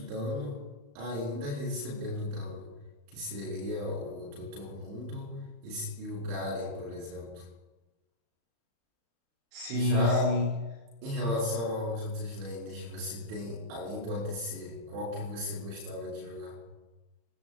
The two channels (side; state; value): left; late; 35 ms